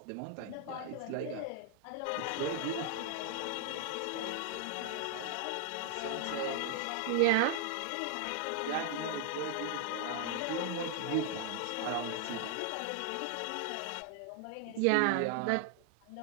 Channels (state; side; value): different; both; correlation 0.00